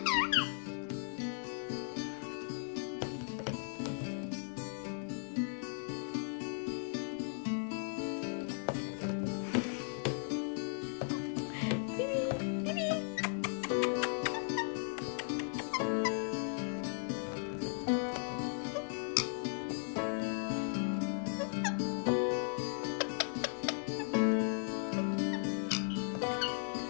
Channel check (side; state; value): right; silent; 53 dB below the other